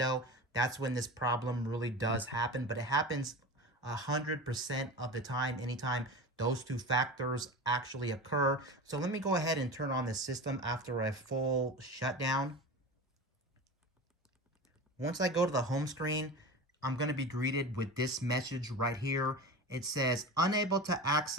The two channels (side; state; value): both; normal; correlation 0.30